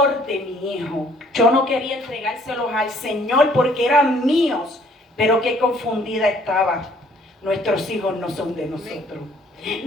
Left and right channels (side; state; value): both; normal; correlation 0.61